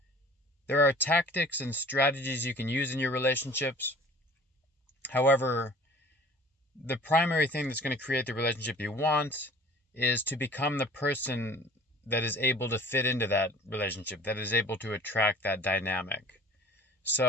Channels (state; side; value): normal; both; correlation 0.47